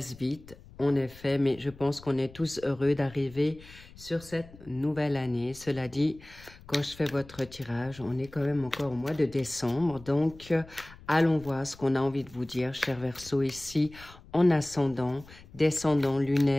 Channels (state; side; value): noise; left; rumble, 21 dB below the sound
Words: vite, en effet, mais je pense qu'on est tous heureux d'arriver sur cette nouvelle année. Cela dit, quand je fais votre tirage, on est quand même encore au mois de décembre, donc allons voir ce qu'on a envie de vous dire, chers Verseaux, ici en ascendant, descendant